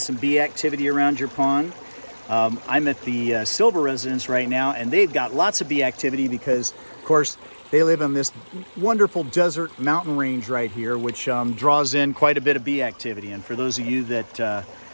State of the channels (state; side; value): inverted; both; correlation -1.00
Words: bee activity around your pond. I'm at the Silver residence right now, and they've got lots of bee activity because, of course, they live in this wonderful desert mountain range right here, which draws in quite a bit of bee activity. And for those of you that